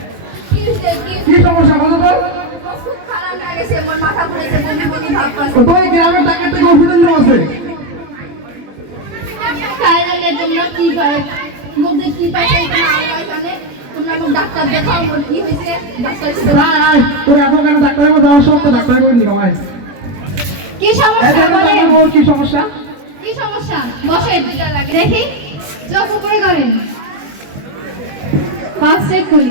কি হইছে? কি সমস্যা বলো তো? খুব খারাপ লাগেছে, মোর মাথা ঘুরেছে, বমি বমি ভাব পাচ্ছে। তো এই গ্রামের টাকা থেকে ওষুধের লোক আছে। তাই জানে তোমরা কি পাই, মধ্যে কি পাইছে তোমরা আল্লাহ জানে। তোমরা মোক ডাক্তার দেখাও, মোর কি হয়েছে ডাক্তার আয় তোর এত কেন ডাক্তারের মধ্যে যাওয়ার সব তো ডাক্তার করে নিও আয়। কি এই সমস্যা দেখো তো বলেন? আমার বউর কি সমস্যা? কি সমস্যা? বসেন দেখি, চোখ উপরে করেন, পাস চেক করি।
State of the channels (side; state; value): left; late; 21 ms